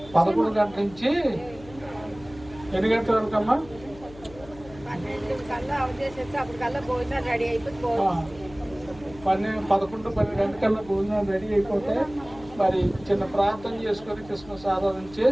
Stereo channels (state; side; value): noise; left; hum, 19 dB below the sound